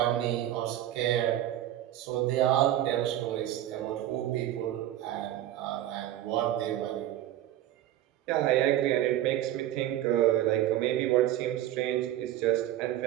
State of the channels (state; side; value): quieter; left; 13.0 dB